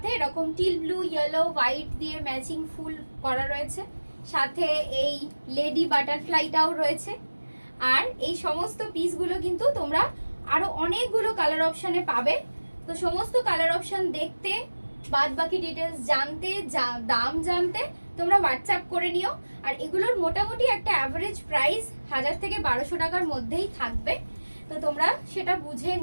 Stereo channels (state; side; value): inverted; both; correlation -1.00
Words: এরকম টিল ব্লু, ইয়েলো, হোয়াইট দিয়ে ম্যাচিং ফুল করা রয়েছে। সাথে এই লেডি বাটারফ্লাইটাও রয়েছে। আর এই সমস্ত পিসগুলো কিন্তু তোমরা আরো অনেকগুলো কালার অপশনে পাবে। তো সমস্ত কালার অপশন দেখতে, বাদ বাকি ডিটেলস জানতে, দাম জানতে তোমরা হোয়াটসঅ্যাপ করে নিও। আর এগুলোর মোটামুটি একটা অ্যাভারেজ প্রাইস 1000 থেকে 1200 টাকার মধ্যেই থাকবে। তো তোমরা সেটা বুঝে